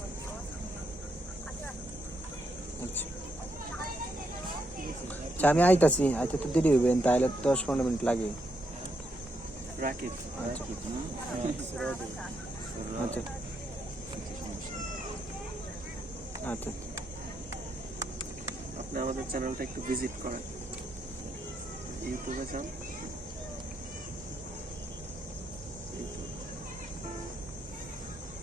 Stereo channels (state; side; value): normal; both; correlation 0.79